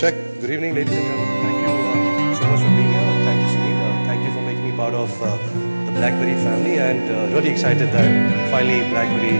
Good evening, ladies and gentlemen. Thank you so much for being here. Thank you, Sunil. Thank you for making me part of the BlackBerry family, and really excited that finally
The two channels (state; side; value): inverted; both; correlation -1.00